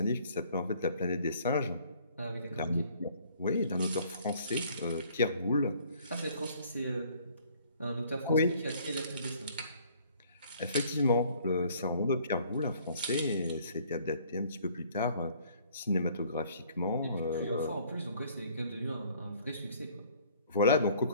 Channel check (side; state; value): both; inverted; correlation -0.58